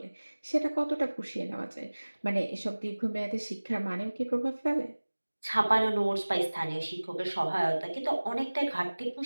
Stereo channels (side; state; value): both; inverted; correlation -1.00